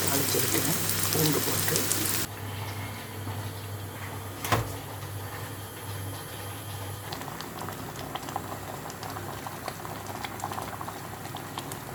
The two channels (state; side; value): identical; both; correlation 1.00